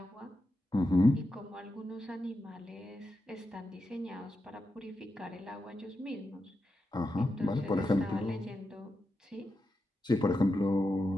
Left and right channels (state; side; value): normal; both; correlation 0.88